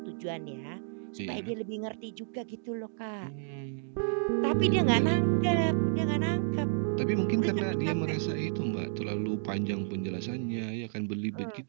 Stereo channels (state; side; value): silent; left; digital silence